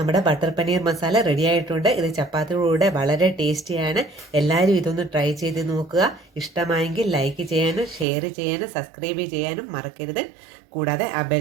ബട്ടർ പനീർ മസാല റെഡി ആയിട്ടുണ്ട്. ഇത് ചപ്പാത്തിയുടെ വളരെ ടേസ്റ്റിയാണ്. എല്ലാവരും ഇതൊന്ന് ട്രൈ ചെയ്ത് നോക്കുക. ഇഷ്ടമായെങ്കിൽ ലൈക്ക് ചെയ്യാനും ഷെയർ ചെയ്യാനും സബ്സ്ക്രൈബ് ചെയ്യാനും മറക്കരുത്. കൂടാതെ ആ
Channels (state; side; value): drops out; left; at 8.1 s